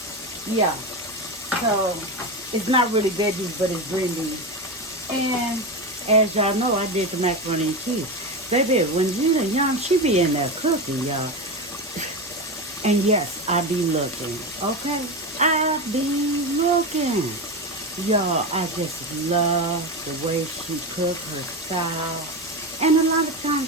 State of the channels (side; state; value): both; normal; correlation 0.18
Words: Yeah. So it's not really veggies, but it's green beans. And as y'all know, I did the macaroni and cheese. Baby, when Gina young, she be in there cooking, y'all. And yes, I be looking, okay? I be looking. Y'all, I just love the way she cook, her style. And a lot of